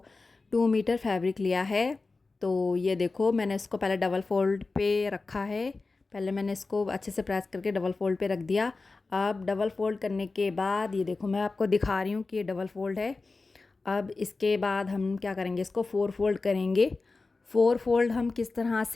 मीटर फैब्रिक लिया है। तो ये देखो, मैंने इसको पहले डबल फोल्ड पे रखा है। पहले मैंने इसको अच्छे से प्रेस करके डबल फोल्ड पे रख दिया। अब डबल फोल्ड करने के बाद ये देखो, मैं आपको दिखा रही हूँ कि ये डबल फोल्ड है। अब इसके बाद हम क्या करेंगे, इसको 4 फोल्ड करेंगे। 4 फोल्ड हम किस तरह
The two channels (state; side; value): quieter; right; 3.7 dB